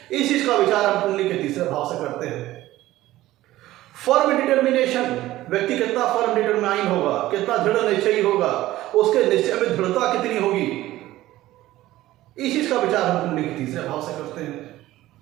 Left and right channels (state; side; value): quieter; left; 15.9 dB